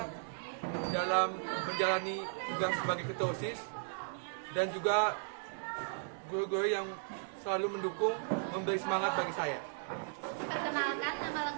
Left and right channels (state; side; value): silent; left; digital silence